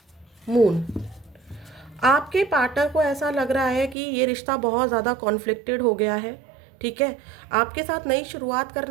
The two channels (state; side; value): drops out; left; at 4.0 s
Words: moon. आपके पार्टनर को ऐसा लग रहा है कि ये रिश्ता बहुत ज़्यादा कॉन्फ्लिक्टेड हो गया है, ठीक है। आपके साथ नई शुरुआत